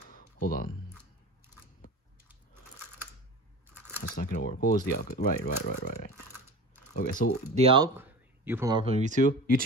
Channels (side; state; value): both; normal; correlation 0.33